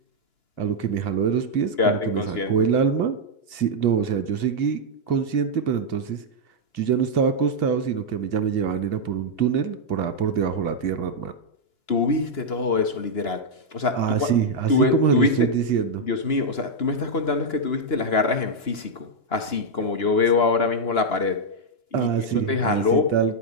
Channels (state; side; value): late; right; 2.9 ms